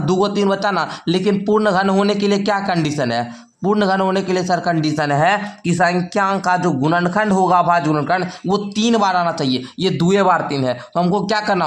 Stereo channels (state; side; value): identical; both; correlation 1.00